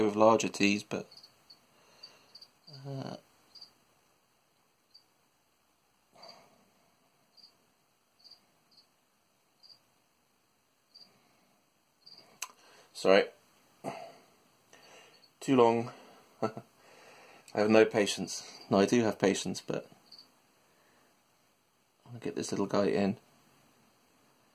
with larger teas, but sorry, too long. I have no patience. No, I do have patience, but I'm going to get this little guy in.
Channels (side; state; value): both; identical; correlation 1.00